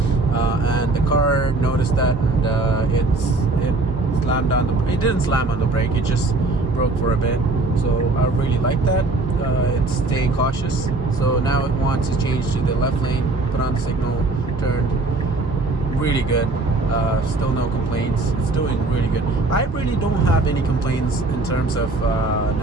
and the car noticed that, and it slammed on the. It didn't slam on the brake. It just broke for a bit. So I really like that. It's staying cautious. So now it wants to change to the left lane. Put on the signal, turned. Really good. Still no complaints. It's doing really good. I really don't have any complaints in terms of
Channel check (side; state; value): left; quieter; 3.1 dB